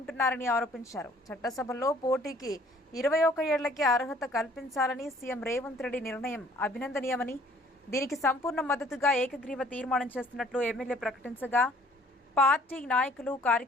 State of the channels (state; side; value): normal; both; correlation 0.57